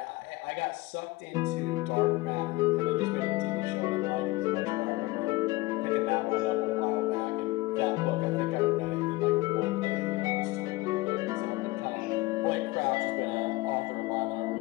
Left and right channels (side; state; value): right; quieter; 20.9 dB